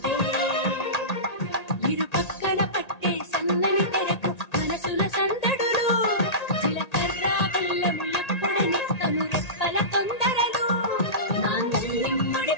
ఇరు పక్కన పట్టే సన్నని తెరకు మనసుల సందడులు జీలకర్ర బెల్లము ఎప్పుడని కను రెప్పల తొందరలు మాంగళ్యం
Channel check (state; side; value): late; right; 1.8 ms